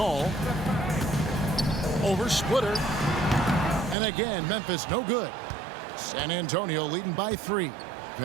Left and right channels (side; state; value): left; drops out; at 4.0 s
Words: Over Splitter. And again, Memphis no good. San Antonio leading by 3.